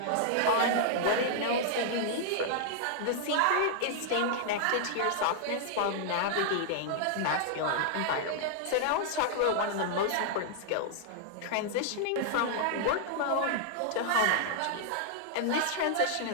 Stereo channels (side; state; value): both; different; correlation -0.01